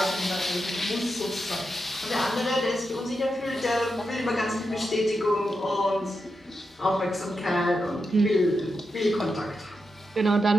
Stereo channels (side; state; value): both; normal; correlation 0.87